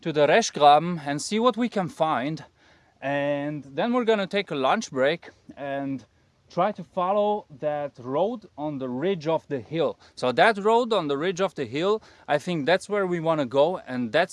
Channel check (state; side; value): identical; both; correlation 1.00